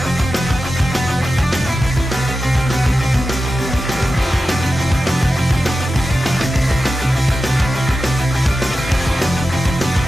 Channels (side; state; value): both; normal; correlation 0.93